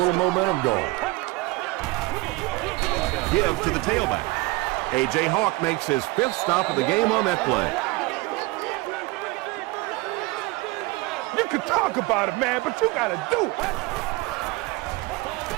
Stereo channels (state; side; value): quieter; left; 22.2 dB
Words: momentum going. Give to the tailback. A.J. Hawk makes his 5th stop of the game on that play. You can talk about it, man, but you got to do it.